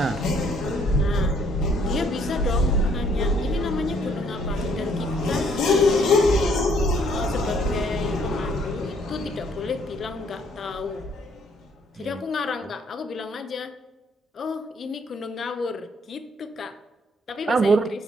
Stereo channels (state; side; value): normal; both; correlation 0.65